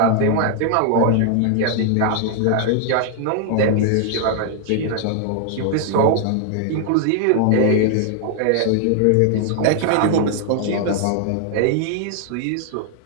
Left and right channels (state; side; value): different; both; correlation 0.00